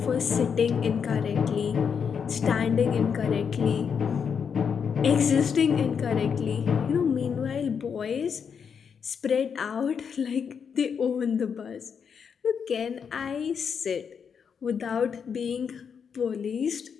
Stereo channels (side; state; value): right; quieter; 6.8 dB